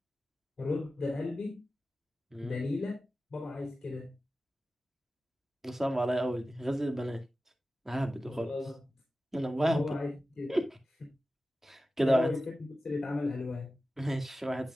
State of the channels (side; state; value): both; normal; correlation 0.94